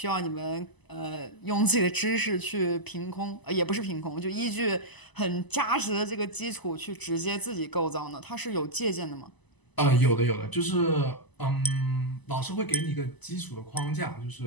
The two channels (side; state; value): right; late; 1.0 ms